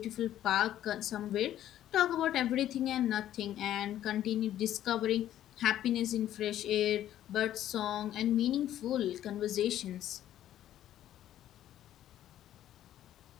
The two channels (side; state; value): right; quieter; 12.1 dB